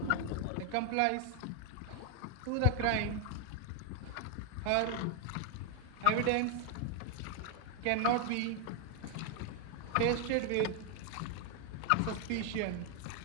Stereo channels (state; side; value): different; both; correlation 0.00